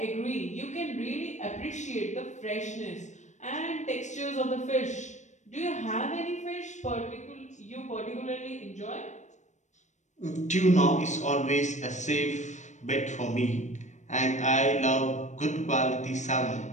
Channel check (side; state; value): right; late; 0.34 ms